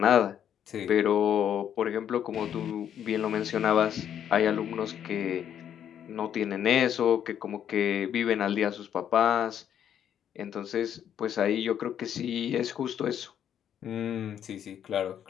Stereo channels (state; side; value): quieter; right; 9.5 dB